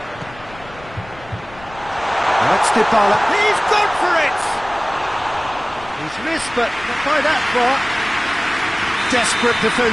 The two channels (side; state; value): left; noise; rumble, 20 dB below the sound